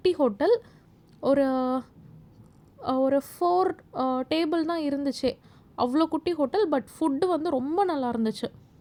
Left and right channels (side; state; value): both; identical; correlation 1.00